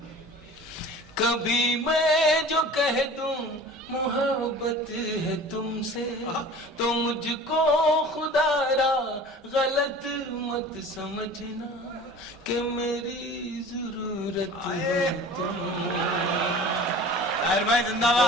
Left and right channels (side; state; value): both; normal; correlation 0.42